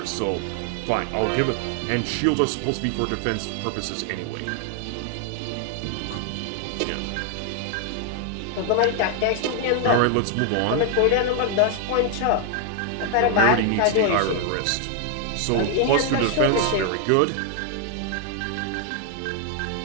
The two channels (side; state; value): both; different; correlation 0.00